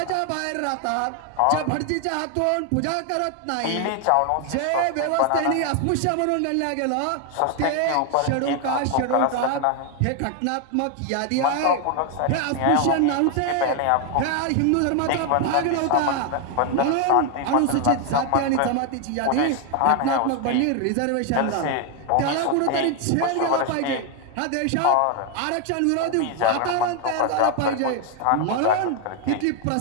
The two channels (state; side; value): different; both; correlation 0.01